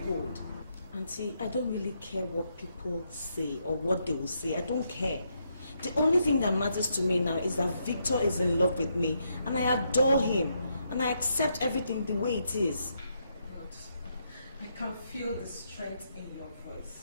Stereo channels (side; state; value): both; inverted; correlation -0.78